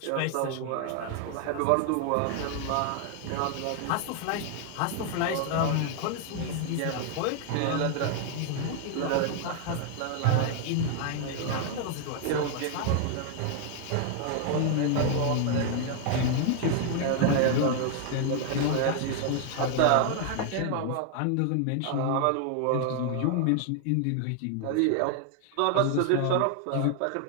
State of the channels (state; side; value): different; both; correlation 0.00